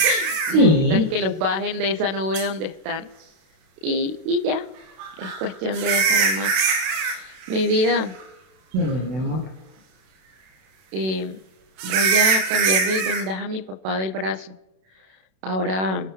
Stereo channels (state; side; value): late; left; 32 ms